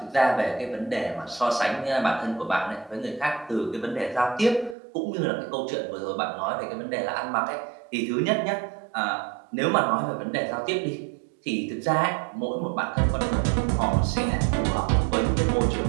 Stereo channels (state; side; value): drops out; left; at 4.8 s